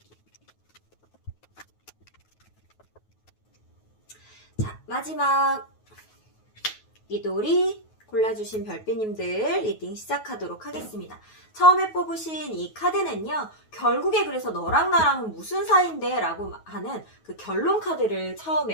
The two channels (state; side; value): late; right; 9.3 ms